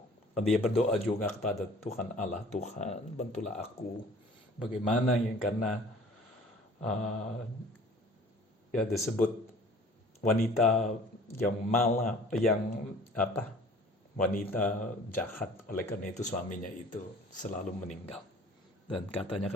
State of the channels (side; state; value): both; normal; correlation 0.49